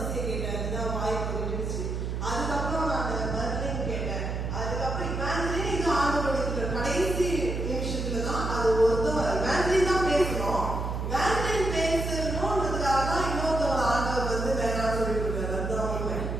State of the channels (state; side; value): noise; right; hum, 3 dB below the sound